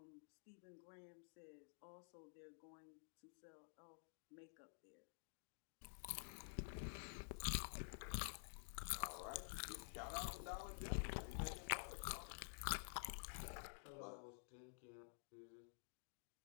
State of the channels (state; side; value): silent; right; digital silence